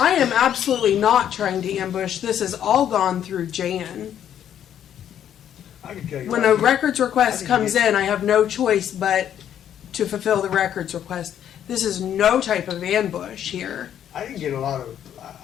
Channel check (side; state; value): right; quieter; 10.0 dB